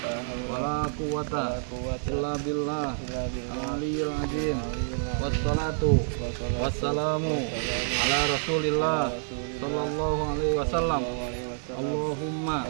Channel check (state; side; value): silent; left; digital silence